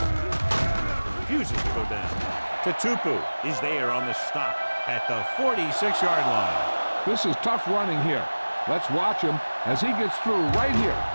Refuses to go down. Tatupu is there on the stop at the 46-yard line. This is tough running here. Let's watch him as he gets through right here,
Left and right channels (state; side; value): inverted; both; correlation -1.00